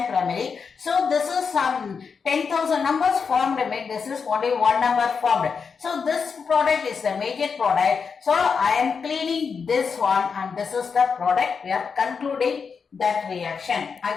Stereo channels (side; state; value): right; quieter; 5.7 dB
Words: primary. So this is some 10,000 numbers formed. This is only one number formed. So this product is the major product. So I am cleaning this one, and this is the product. We are concluding that reaction.